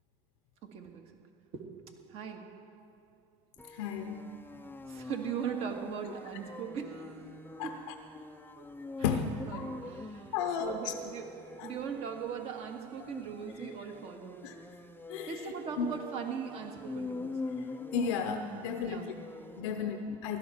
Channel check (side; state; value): both; normal; correlation 0.28